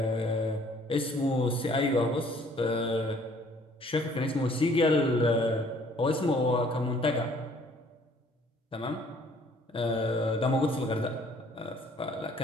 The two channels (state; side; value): normal; both; correlation 0.58